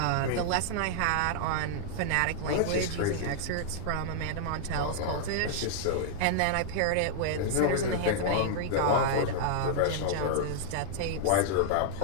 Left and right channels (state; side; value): different; both; correlation -0.01